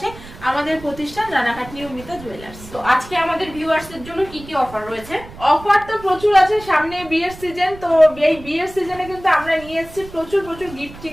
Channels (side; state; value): right; noise; rumble, 17 dB below the sound